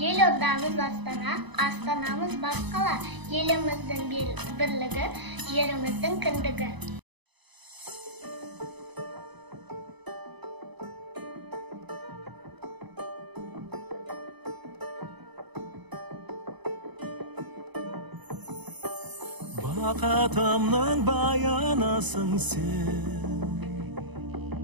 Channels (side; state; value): left; late; 0.99 ms